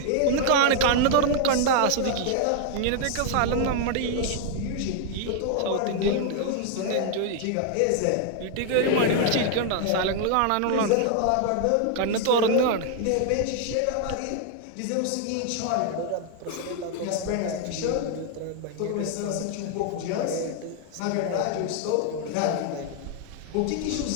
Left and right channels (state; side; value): different; both; correlation 0.00